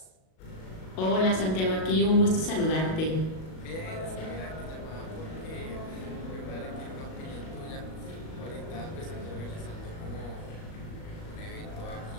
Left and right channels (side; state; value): right; late; 37 ms